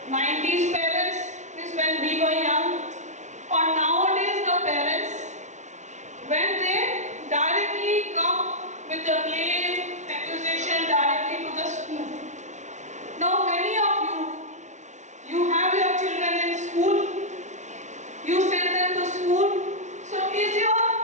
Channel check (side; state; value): left; late; 0.34 ms